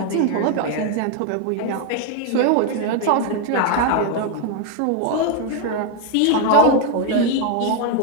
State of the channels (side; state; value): both; different; correlation 0.01